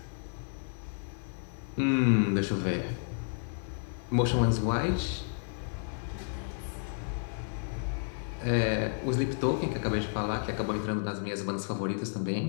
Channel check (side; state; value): right; silent; 57 dB below the other